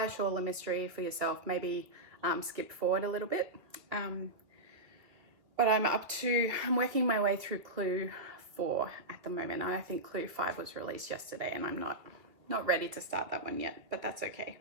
shawl a mystery for yourself, maybe skip forward a little bit. But I'm working my way through Clue 4 at the moment. I think Clue 5 was released yesterday, and I'm not ready to start that one yet, but that's okay.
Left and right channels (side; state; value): left; late; 2.3 ms